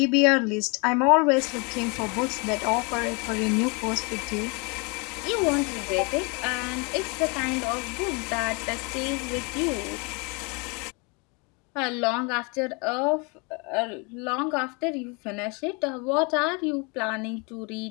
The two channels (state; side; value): quieter; right; 31.4 dB